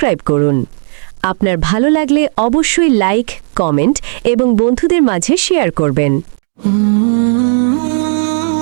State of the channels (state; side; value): silent; left; digital silence